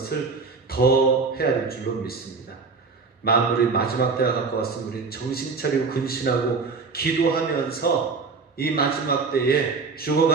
더 해야 될 줄로 믿습니다. 만물의 마지막 때가 가까웠으면 우리는 정신 차리고 근신하고 기도하면서 이 마지막 때에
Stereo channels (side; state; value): left; quieter; 4.5 dB